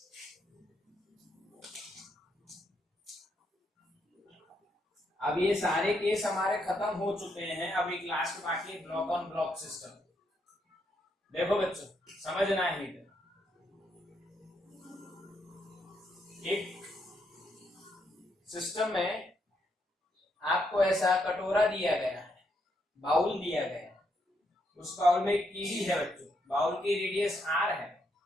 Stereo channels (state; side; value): normal; both; correlation 0.77